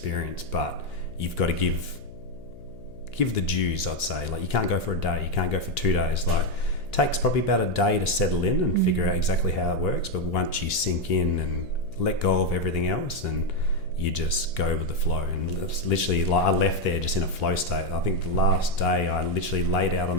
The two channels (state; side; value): noise; left; hum, 19 dB below the sound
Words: but you've got to give the dues, I'd say. Like, you can't go for a day, you can't go for 2 days. Like, it takes probably about a day to settle in and figure out exactly how it works, but once you sink in and let go of everything else, and you just go with the flow. And it's literally, like, I left there just in a flow state. I think the last day I literally laid out on